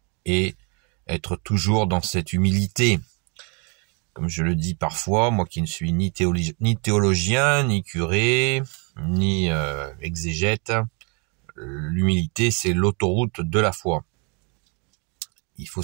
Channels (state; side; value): quieter; left; 33.3 dB